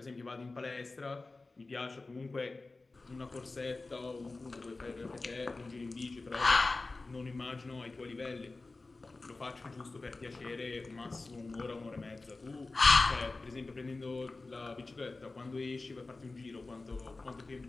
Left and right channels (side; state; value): right; quieter; 3.4 dB